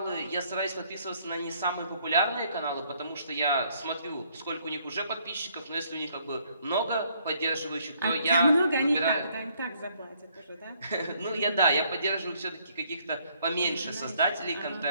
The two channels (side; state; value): both; inverted; correlation -0.67